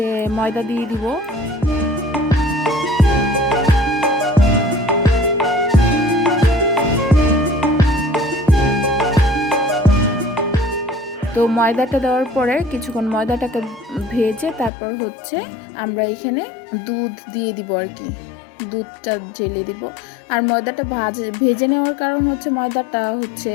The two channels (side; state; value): right; drops out; at 14.7 s